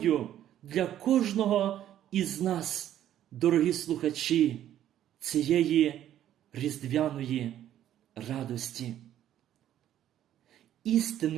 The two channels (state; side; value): quieter; left; 11.6 dB